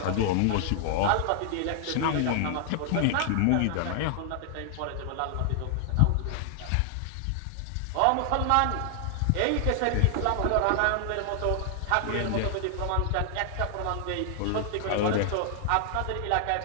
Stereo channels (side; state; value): both; different; correlation 0.00